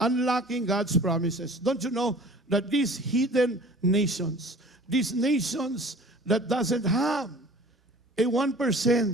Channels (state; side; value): normal; both; correlation 0.46